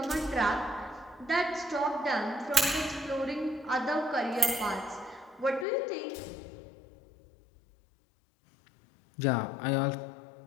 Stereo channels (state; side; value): drops out; right; at 5.7 s